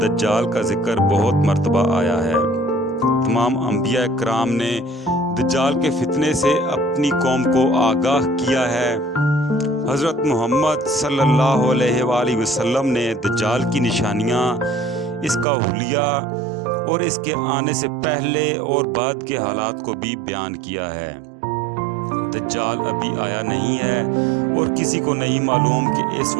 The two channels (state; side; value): drops out; left; at 15.5 s